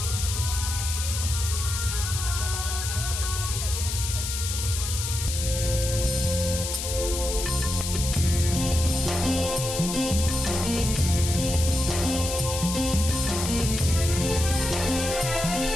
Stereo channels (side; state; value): left; noise; hiss, 4 dB below the sound